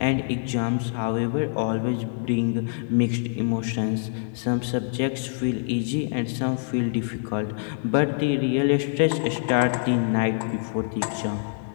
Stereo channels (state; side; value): silent; right; digital silence